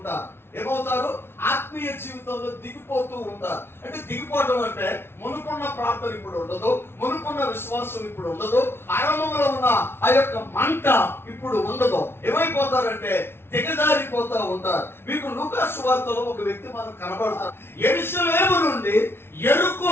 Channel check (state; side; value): late; right; 0.12 ms